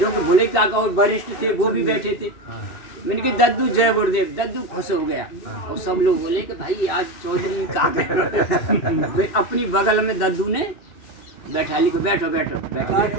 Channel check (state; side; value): late; right; 2.7 ms